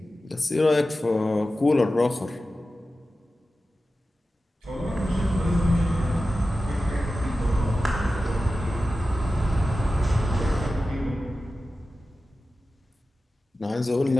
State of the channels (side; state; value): both; normal; correlation 0.94